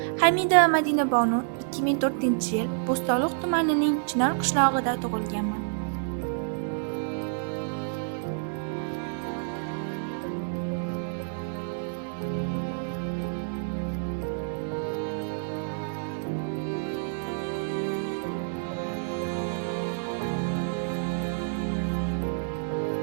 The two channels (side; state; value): left; silent; 59 dB below the other